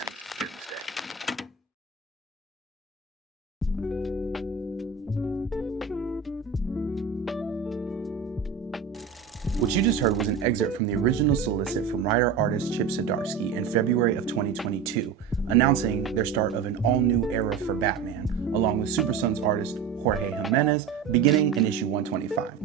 Doomsday. What you just heard was an excerpt from the original solicit from writer-artist Chip Zdarsky in February of 2022, announcing their start of an all-new era for Batman, along with Super Sons artist Jorge Jimenez, beginning in issue 125,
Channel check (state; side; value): quieter; left; 6.5 dB